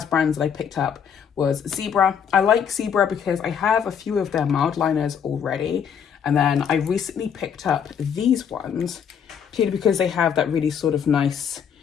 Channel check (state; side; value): quieter; right; 7.6 dB